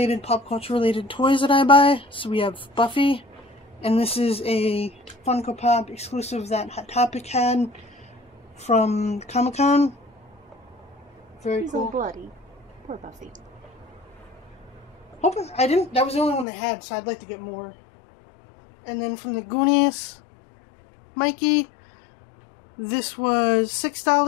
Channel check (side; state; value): right; drops out; at 16.4 s